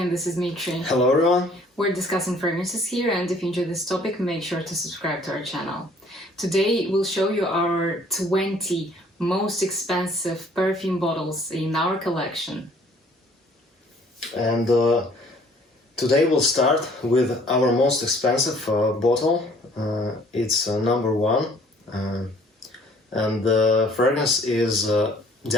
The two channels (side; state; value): both; normal; correlation 0.57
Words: this is Dmitry. Hello everyone. We're discussing fragrances here, and if you enjoy this topic, make sure to subscribe to our channel. Today we'll show you our 20 most expensive perfume bottles in our collection. And today we'll start with our most expensive bottle. It's number one. And the fragrance is